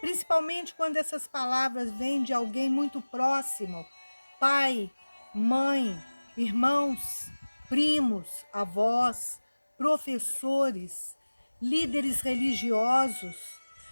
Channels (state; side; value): inverted; both; correlation -1.00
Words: quando essas palavras vêm de alguém muito próximo, pai, mãe, irmãos, primos, avós, professores, líderes religiosos.